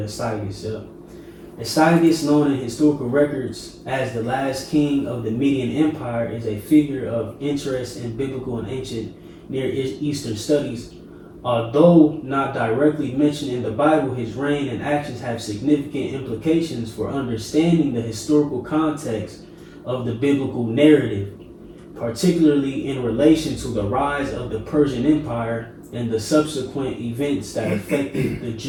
Astyages, known in historical records as the last king of the Median Empire, is a figure of interest in biblical and ancient Near Eastern studies. Although not directly mentioned in the Bible, his reign and actions have significant implications for understanding the historical context of the biblical narrative, particularly in relation to the rise of the Persian Empire and the subsequent events that affected the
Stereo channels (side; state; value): both; identical; correlation 1.00